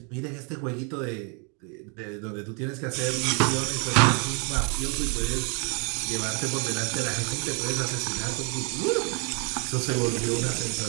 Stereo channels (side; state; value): left; quieter; 36.3 dB